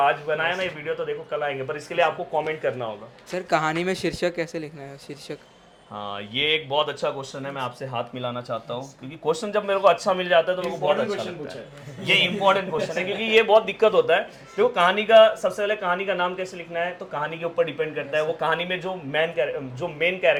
बनाया ना ये वीडियो तो देखो कल आएंगे, पर इसके लिए आपको कमेंट करना होगा। सर कहानी में शीर्षक कैसे लिखना है? शीर्षक हाँ, ये एक बहुत अच्छा क्वेश्चन है, मैं आपसे हाथ मिलाना चाहता हूँ, क्योंकि क्वेश्चन जब मेरे को अच्छा मिल जाता है तो मेरे को बहुत अच्छा लगता है। ये इंपॉर्टेंट क्वेश्चन है, क्योंकि ये बहुत दिक्कत होता है। देखो कहानी का, सबसे पहले कहानी का नाम कैसे लिखना है तो कहानी के ऊपर डिपेंड करता है। वो कहानी में जो मेन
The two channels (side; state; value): both; identical; correlation 1.00